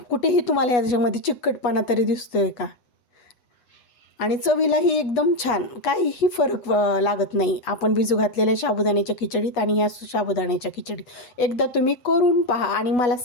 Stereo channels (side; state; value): right; late; 8.2 ms